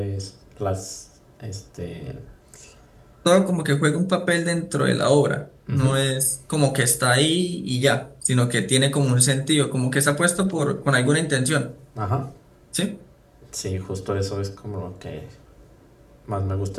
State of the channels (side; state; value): both; identical; correlation 1.00